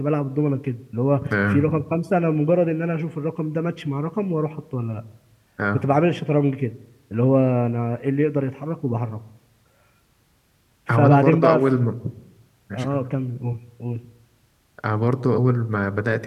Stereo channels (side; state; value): both; identical; correlation 1.00